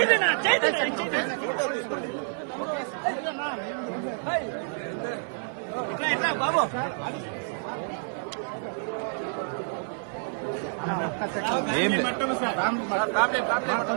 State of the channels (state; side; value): silent; left; 59 dB below the other